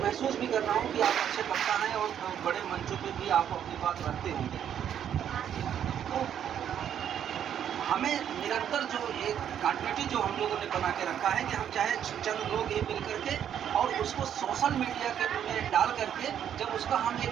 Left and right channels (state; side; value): quieter; left; 9.4 dB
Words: महसूस भी कर रहा हूँ कि आप अच्छे वक्ता हैं और बड़े मंचों पे भी आप अपनी बात रखते होंगे। तो हमें निरंतर जो एक कंटिन्यूटी जो हम लोगों ने बना के रखा है कि हम चाहे चंद लोग ही मिल करके और उसको सोशल मीडिया के में डाल करके जब उसका हम